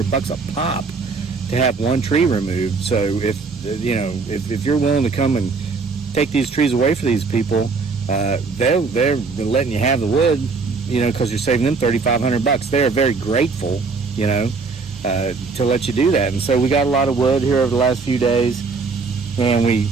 a pop to have one tree removed. So if you're willing to come and take these trees away for these people, they're letting you have the wood, because you're saving them $3,500. They are very grateful, to let you do that. And so we got a lot of wood here over the last few days. And we,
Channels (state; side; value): quieter; left; 4.5 dB